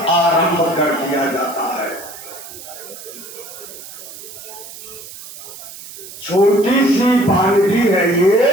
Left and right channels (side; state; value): right; noise; hiss, 14 dB below the sound